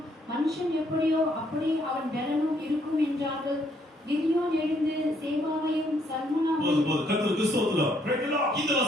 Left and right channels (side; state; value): both; normal; correlation 0.70